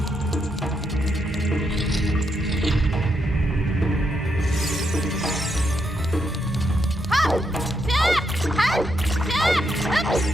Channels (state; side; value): normal; both; correlation 0.80